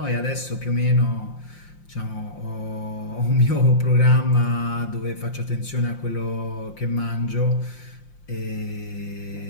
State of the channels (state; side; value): late; right; 5.7 ms